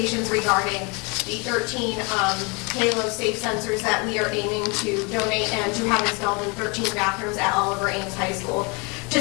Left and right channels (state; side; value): quieter; right; 30.2 dB